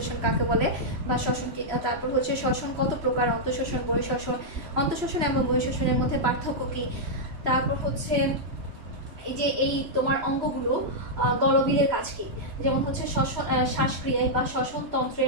কাকে বলে, বা শ্বসন কি, তারপর হচ্ছে শ্বসন কত প্রকার, অন্তঃশ্বসন, বহিঃশ্বসন, অন্তঃশ্বসন এবং বহিঃশ্বসনের মধ্যে পার্থক্য কি, তারপর হচ্ছে এই যে এই তোমার অঙ্গগুলো গলবিলের কাজ কি, যেমন হচ্ছে শ্বাসক্রিয়ায় বা শ্বসন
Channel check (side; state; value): left; late; 3.0 ms